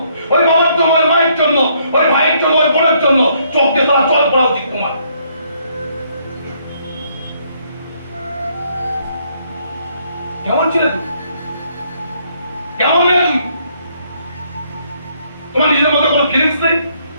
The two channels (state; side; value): inverted; both; correlation -0.69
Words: ওই বাবার জন্য, ওই মায়ের জন্য, ওই ভাইয়ের জন্য, ওই বোনের জন্য। চোখ দিয়ে তারা জল পড়া উচিত তোমার। কেমন ছিলে তুমি? কেমন মেয়ে তুমি? তোমার নিজের মধ্যে কোনো ফিলিংস নেই,